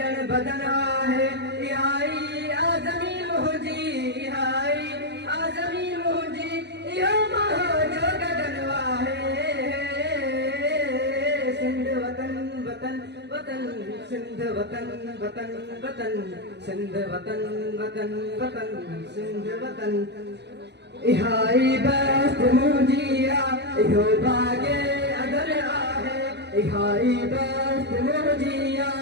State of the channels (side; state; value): left; late; 0.50 ms